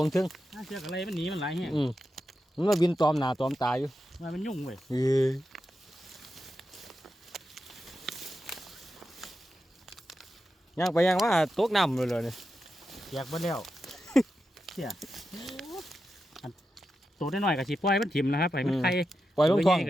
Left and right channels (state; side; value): normal; both; correlation 0.89